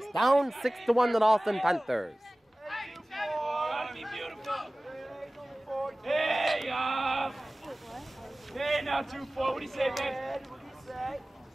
Down 6-1 to the Holliston Panthers. Gotta be beautiful. Hey, hey, now 2-4. What do you say, babe?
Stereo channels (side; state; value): both; normal; correlation 0.98